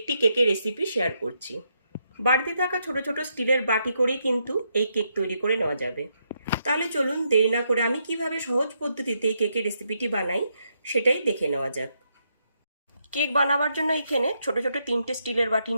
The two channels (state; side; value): inverted; both; correlation -0.79